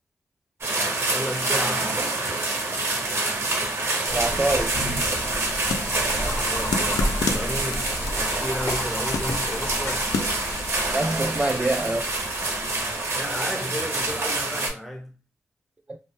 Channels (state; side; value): normal; both; correlation 0.46